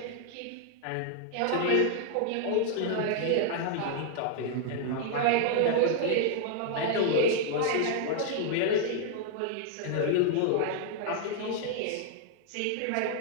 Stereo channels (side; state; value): both; different; correlation 0.00